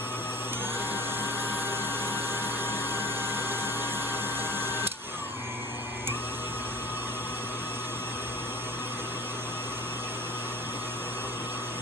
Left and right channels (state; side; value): normal; both; correlation 0.41